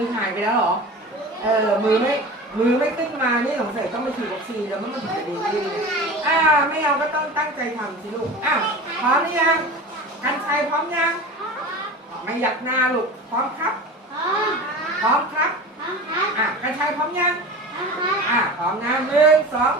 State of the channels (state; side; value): normal; both; correlation 0.34